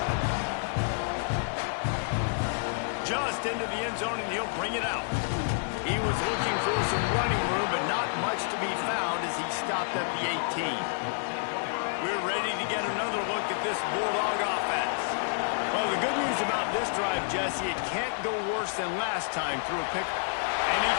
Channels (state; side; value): silent; right; 58 dB below the other